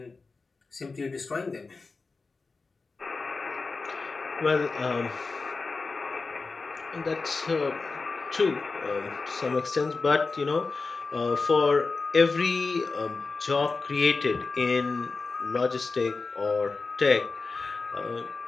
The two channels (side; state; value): right; quieter; 4.1 dB